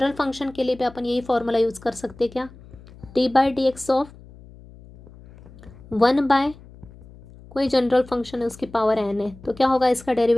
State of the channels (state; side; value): noise; left; hum, 21 dB below the sound